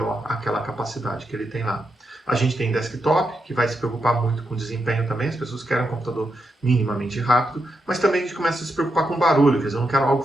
aquela capacidade que ele tem lá. A gente tem desktop, que vai se preocupar muito com desempenho também, as pessoas querem um computador minimamente rápido, mas também a gente começa a se preocupar com barulho, quer dizer, eu não quero algo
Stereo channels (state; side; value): normal; both; correlation 0.83